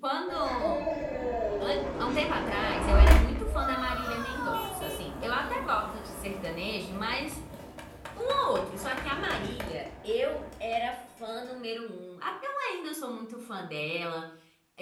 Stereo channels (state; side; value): identical; both; correlation 1.00